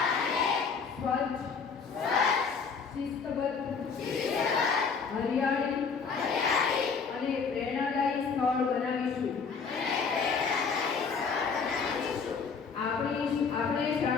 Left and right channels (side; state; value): right; quieter; 5.5 dB